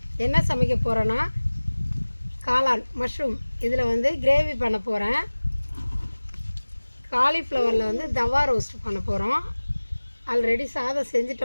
என்ன சமைக்க போகிறோன்னா காளான் மஷ்ரூம் இதில் கிரேவி பண்ண போகிறேன். காலிஃப்ளவரில் தவா ரோஸ்ட் பண்ண போகிறோம். ஆல்ரெடி சாதம்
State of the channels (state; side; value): inverted; both; correlation -1.00